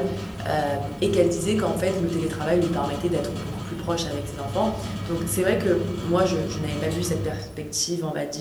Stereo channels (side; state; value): both; identical; correlation 1.00